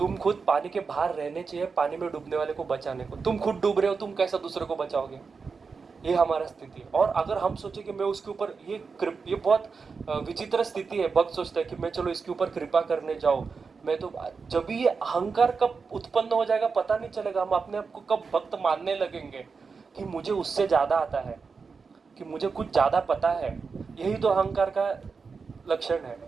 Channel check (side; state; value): left; quieter; 5.0 dB